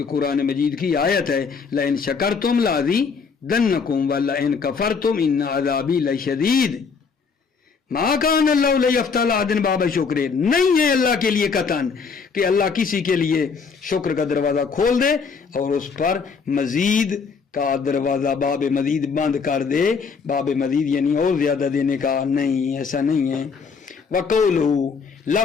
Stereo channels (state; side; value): quieter; right; 5.4 dB